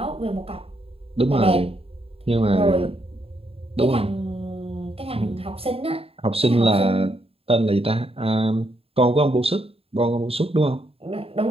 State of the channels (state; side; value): late; left; 0.28 ms